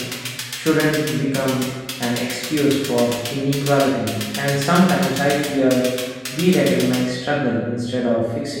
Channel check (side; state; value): both; identical; correlation 1.00